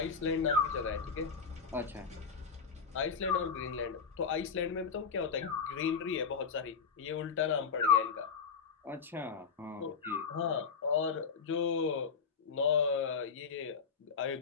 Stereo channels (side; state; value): right; quieter; 5.8 dB